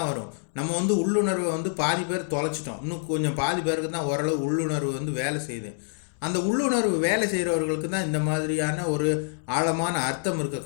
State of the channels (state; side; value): silent; right; digital silence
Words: வரும். நம்ம வந்து உள்ளுணர்வை வந்து பாதி பேர் தொலைச்சிட்டோம், இன்னும் கொஞ்சம் பாதி பேருக்கு தான் ஓரளவு உள்ளுணர்வு வந்து வேலை செய்யுது. அந்த உள்ளுணர்வு வேலை செய்கிறவர்களுக்கு தான் இந்த மாதிரியான ஒரு ஆழமான அர்த்தம் இருக்க